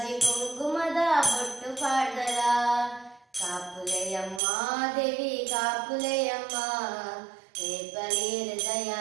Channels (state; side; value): drops out; left; at 4.4 s